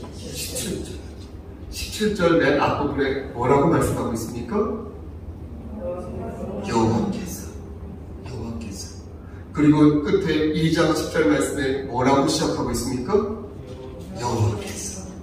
17절. 17절 맨 앞부분에 뭐라고 말씀하고 있습니까? 여호와께서. 그리고 끝에 2장 10절 말씀에 뭐라고 시작하고 있습니까?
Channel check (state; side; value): identical; both; correlation 1.00